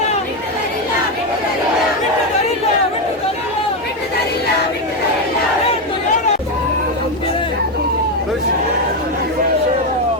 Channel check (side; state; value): both; normal; correlation 0.08